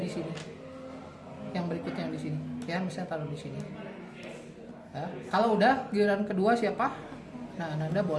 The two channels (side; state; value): both; identical; correlation 1.00